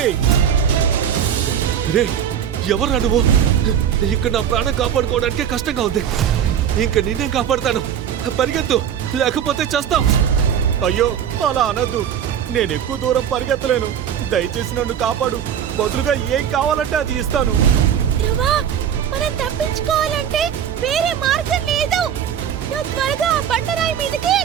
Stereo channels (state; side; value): quieter; left; 8.9 dB